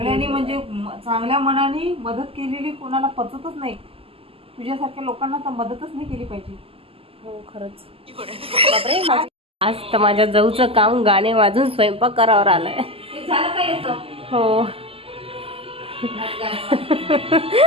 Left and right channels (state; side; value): late; left; 0.27 ms